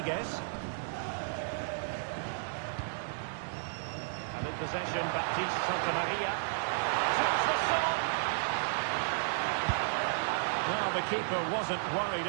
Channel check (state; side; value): silent; left; 56 dB below the other